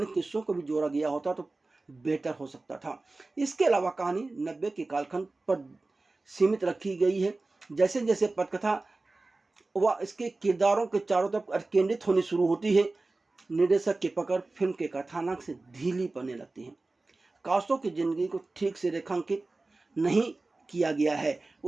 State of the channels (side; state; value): left; quieter; 3.3 dB